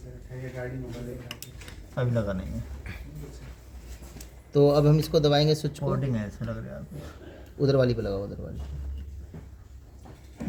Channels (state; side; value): identical; both; correlation 1.00